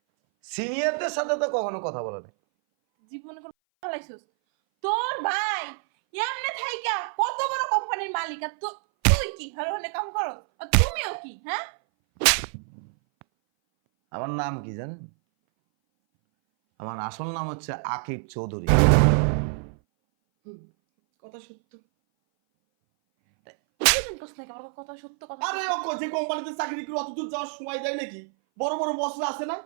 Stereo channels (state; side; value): silent; left; 58 dB below the other